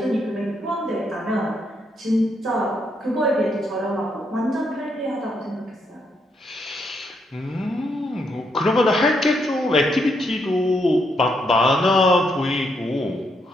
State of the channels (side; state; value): both; normal; correlation 0.77